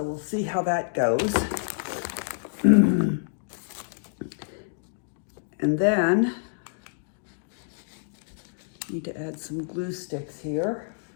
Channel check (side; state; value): right; silent; digital silence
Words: we'll see how that goes. And then need to add some glue sticks here.